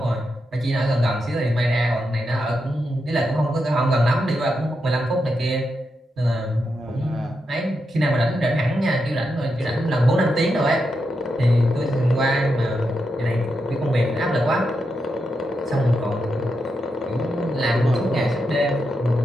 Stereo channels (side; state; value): both; normal; correlation 0.85